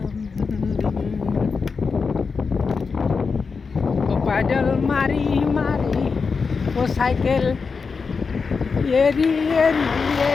ও পাইডাল মারি মারি ও সাইকেল এরি এরি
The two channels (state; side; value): quieter; right; 5.0 dB